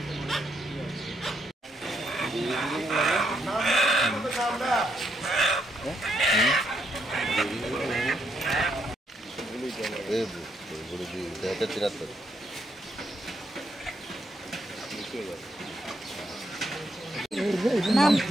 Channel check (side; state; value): both; normal; correlation 0.77